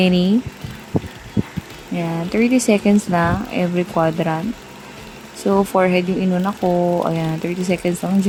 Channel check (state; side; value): identical; both; correlation 1.00